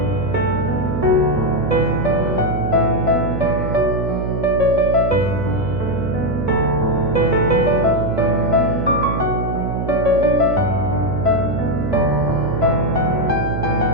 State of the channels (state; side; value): noise; right; hum, 3 dB below the sound